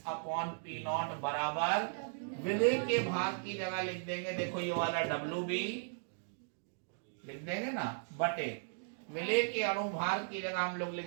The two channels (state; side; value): silent; left; digital silence